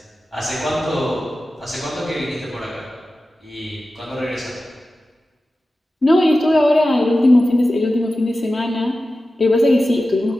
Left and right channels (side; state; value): both; normal; correlation 0.94